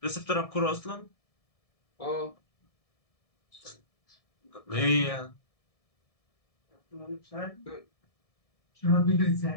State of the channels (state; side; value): late; right; 1.7 ms